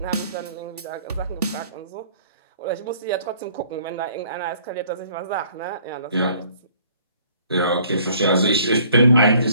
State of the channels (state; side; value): inverted; both; correlation -0.58